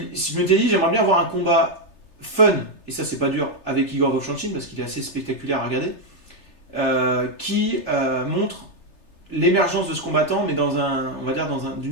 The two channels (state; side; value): late; right; 3.3 ms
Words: je m'étais dit, j'aimerais bien avoir un combat fun, et ça c'est pas dur, avec Igor Vovchanchyn parce qu'il est assez spectaculaire à regarder, qui montre l'émergence de ce combattant, mais on va dire